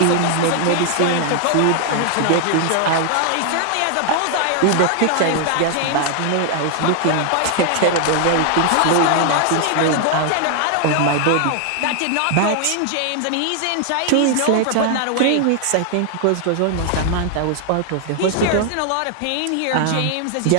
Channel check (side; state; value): both; different; correlation 0.00